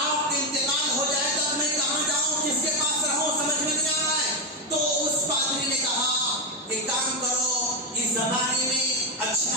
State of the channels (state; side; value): normal; both; correlation 0.07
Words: کا انتقال ہو جائے تب میں کہاں جاؤں؟ کس کے پاس رہوں؟ سمجھ میں نہیں آ رہا ہے. تو اس پادری نے کہا کہ کام کرو، اس زمانے میں اچھے